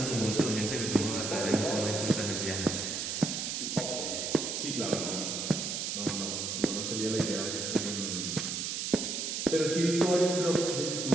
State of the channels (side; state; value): right; noise; hiss, 2 dB below the sound